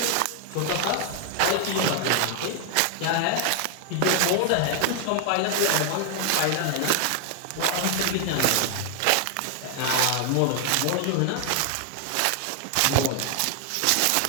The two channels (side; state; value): both; different; correlation 0.00